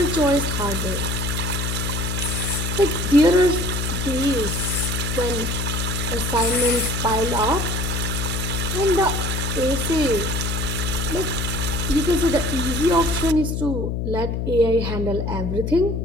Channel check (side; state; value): left; noise; hum, 1 dB below the sound